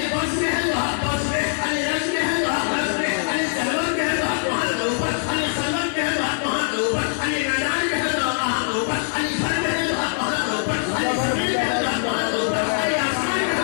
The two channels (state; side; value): silent; right; digital silence